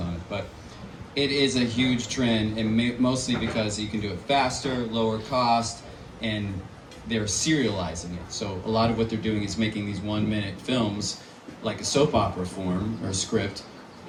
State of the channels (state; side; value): identical; both; correlation 1.00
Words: it, but it is a huge trend, and mostly because you can do it faster, lower cost, and they're serializing it. So a lot of what they're doing is making these 1-minute films like a soap opera form or script,